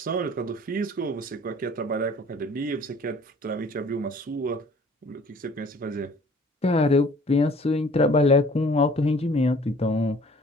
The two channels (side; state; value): both; normal; correlation 0.52